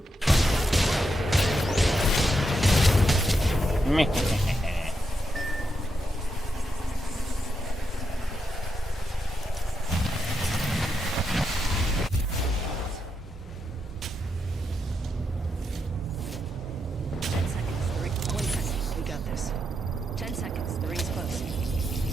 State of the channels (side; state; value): both; normal; correlation 0.83